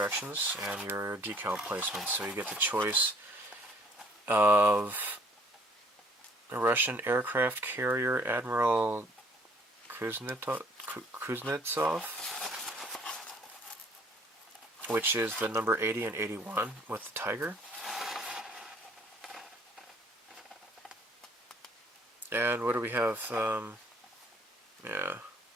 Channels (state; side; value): normal; both; correlation 0.59